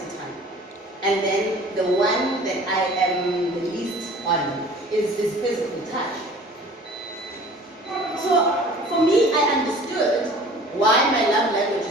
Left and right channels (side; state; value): both; normal; correlation 0.46